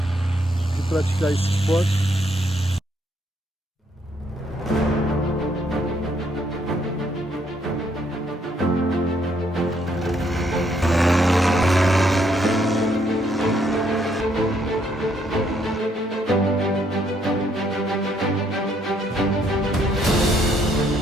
de praticar esse esporte.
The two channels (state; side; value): normal; both; correlation 0.71